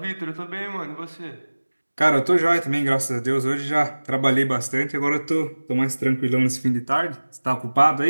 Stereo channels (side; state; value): both; inverted; correlation -1.00